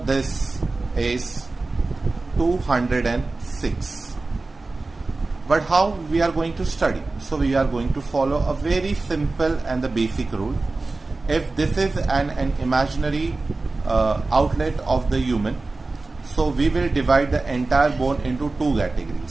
is 206. But how we are going to study? So we are going to follow a very simple and the basic rule. If this is an imaginary outlet of the human, so we will divide the entire bone into 2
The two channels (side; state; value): left; quieter; 3.4 dB